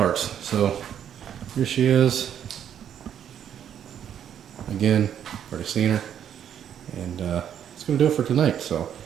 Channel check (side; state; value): left; quieter; 9.4 dB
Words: So here she is. Again, already seen her, and it's going to do it for tonight. So